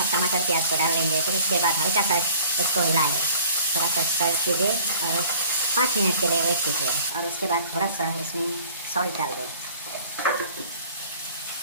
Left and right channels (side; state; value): both; inverted; correlation -0.50